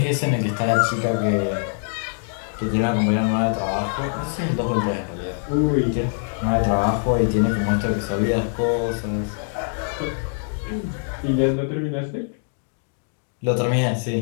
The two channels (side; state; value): right; silent; digital silence